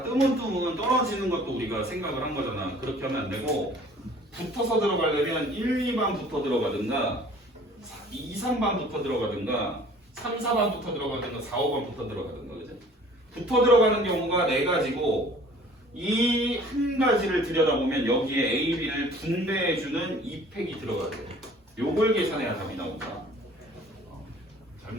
뜨문뜨문 떨어지는 것도 우리가 생각을 한 거잖아. 그렇게 하면 안 되고, 붙어서 들어가려면 1, 2반부터 들어가든가, 2, 3반부터 들어가든가, 3, 4반부터 들어가든가, 4, 5반부터 들어가든가, 그죠? 붙어 들어가는 경우가 4가지고, 이 한 가지를 들여다보면 여기에 A, B를 분배해주는 2팩이 들어가야 돼요. 요걸 계산해야 답이 나온다.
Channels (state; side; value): normal; both; correlation 0.51